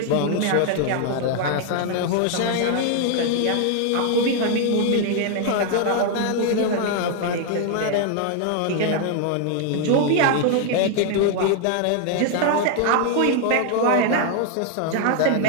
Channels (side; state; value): both; different; correlation 0.00